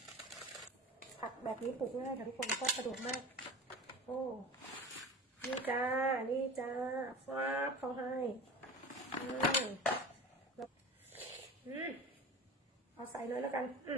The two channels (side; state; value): both; normal; correlation 0.34